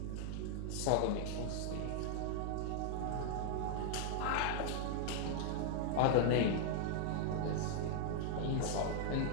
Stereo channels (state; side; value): different; both; correlation -0.01